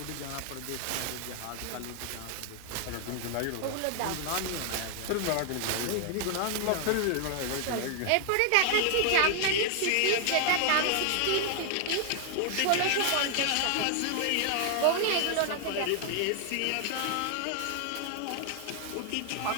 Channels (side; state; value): both; different; correlation 0.00